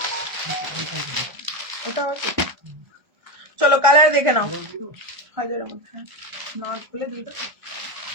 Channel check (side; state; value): left; late; 1.3 ms